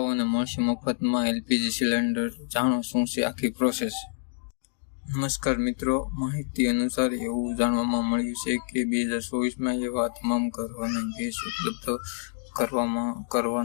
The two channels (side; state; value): right; silent; digital silence